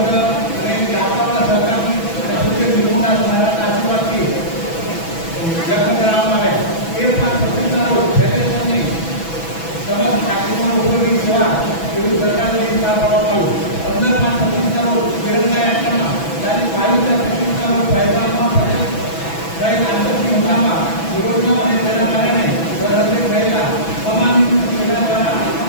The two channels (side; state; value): right; late; 6.1 ms